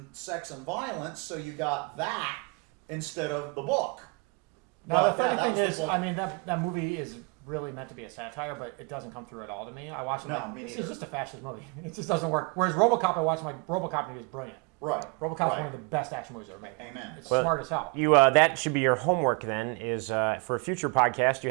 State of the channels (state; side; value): quieter; left; 31.0 dB